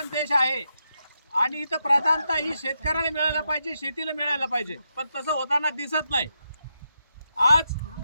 देश आहे आणि इथं प्रधानता ही शेतकऱ्याला मिळायला पाहिजे, शेतीला मिळायला पाहिजे, पण तसं होताना दिसत नाही। आज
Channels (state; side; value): inverted; both; correlation -0.84